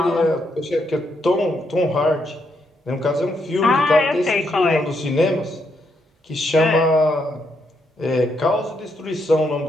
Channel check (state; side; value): normal; both; correlation 0.77